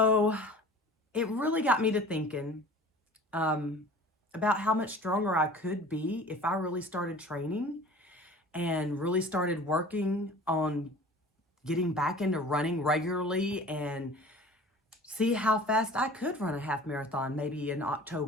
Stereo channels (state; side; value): normal; both; correlation 0.43